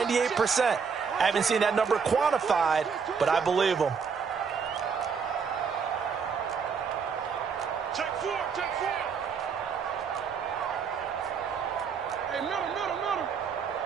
I haven't seen that number quantified, but I believe them. Check 4, check 4. Hey, middle.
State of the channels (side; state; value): left; quieter; 6.1 dB